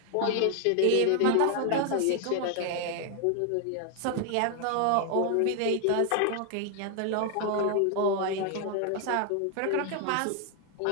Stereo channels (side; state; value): both; different; correlation 0.00